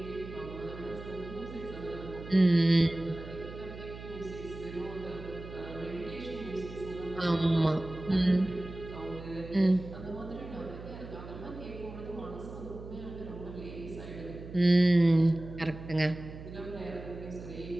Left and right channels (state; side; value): noise; right; hum, 12 dB below the sound